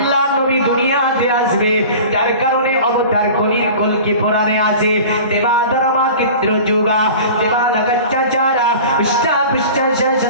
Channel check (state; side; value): inverted; both; correlation -0.39